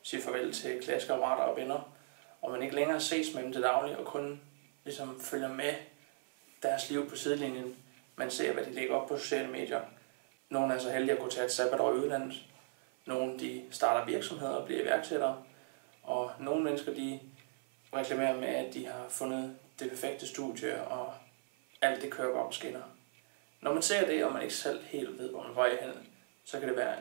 siger farvel til klassekammerater og venner, og man ikke længere ses med dem til daglig, og kun ligesom følger med deres liv på sidelinjen. Man ser, hvad de lægger op på sociale medier. Nogle er så heldige at kunne tage et sabbatår i udlandet. Nogle de starter virksomheder og bliver iværksættere. Og nogle mennesker de reklamerer med, at de har fundet det perfekte studie, og alt det kører bare på skinner. Når man ser det, og man ikke selv helt ved, hvor man vej hen, så kan det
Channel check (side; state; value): left; silent; 53 dB below the other